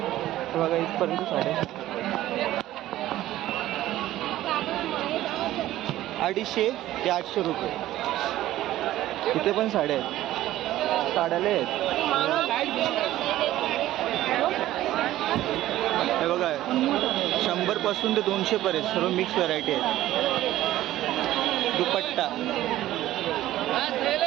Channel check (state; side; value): quieter; left; 14.5 dB